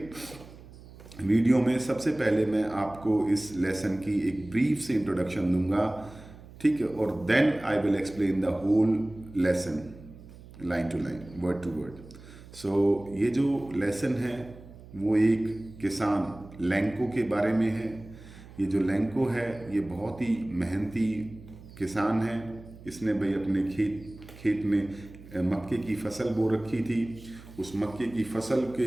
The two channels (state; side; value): noise; right; hum, 19 dB below the sound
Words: वीडियो में सबसे पहले मैं आपको इस लेसन की एक ब्रीफ से इंट्रोडक्शन दूंगा, ठीक है, और then I will explain the whole lesson line to line, word to word. So ये जो लेसन है वो एक किसान लैंको के बारे में है। ये जो लैंको है ये बहुत ही मेहनती किसान है। इसने भाई अपने खेत में मक्के की फसल बो रखी थी। उस मक्के की फसल